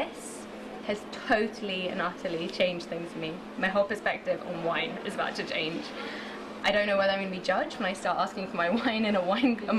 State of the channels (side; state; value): both; identical; correlation 1.00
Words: has totally and utterly changed things for me. My whole perspective on wine is about to change. I don't know whether I'm going to be judged when I start asking for my wine in